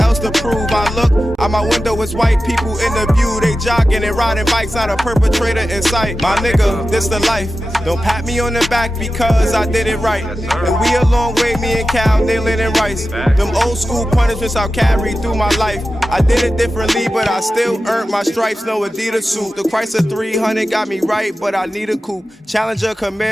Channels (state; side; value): normal; both; correlation 0.93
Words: else to prove. I look out my window, it's white people in the view. They jogging and riding bikes, not a perpetrator in sight. My nigga, this the life. Don't pat me on the back because I did it right. And we a long way, me and Cal, nailing and Rice. Them old school punishments I'll carry through my life. I did it differently, but I still earned my stripes. No Adidas suit. The Chrysler 300 got me right, but I need a coupe. Challenger